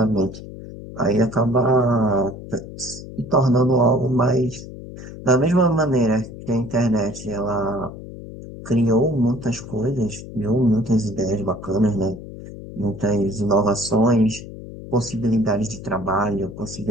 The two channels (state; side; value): noise; left; hum, 13 dB below the sound